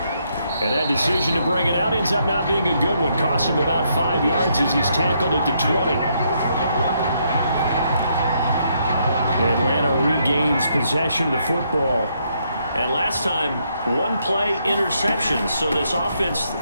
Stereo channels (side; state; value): both; inverted; correlation -0.75